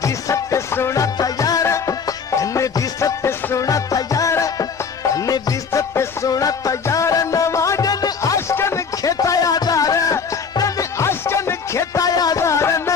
दी सत्य सुना तैयार, कने दी सत्य सुना तैयार, कने दी सत्य सुना तैयार नवा। जन आशकन खेता यादार, जन आशकन खेता यादार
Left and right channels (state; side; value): quieter; right; 5.9 dB